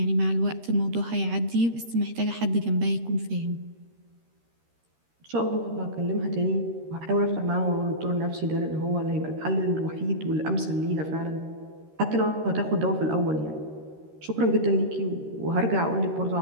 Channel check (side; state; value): left; late; 13 ms